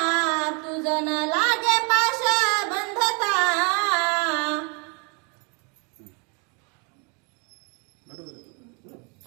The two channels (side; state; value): left; quieter; 34.4 dB